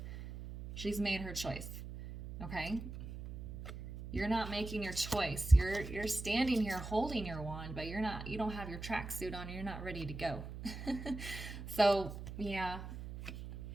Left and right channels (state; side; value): noise; right; hum, 9 dB below the sound